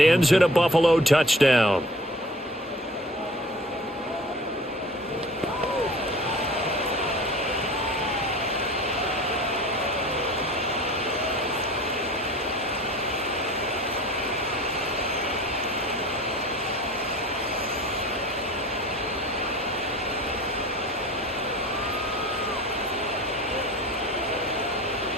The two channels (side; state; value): both; normal; correlation 0.45